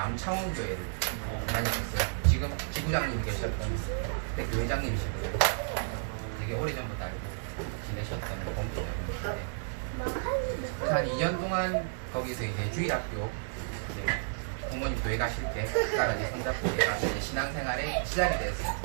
다녔었어요. 지금 지구장님이 계셨던 그때 교회장님이셨거든요. 되게 오래전부터 알고 지내셨던 공교장님이신데 한 2년 동안 거기서 이제 주일학교 이제 부모님 교회 가실 때 따라 이제 손잡고 가서 이제 신앙생활에 시작이 됐어요.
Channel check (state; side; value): silent; left; digital silence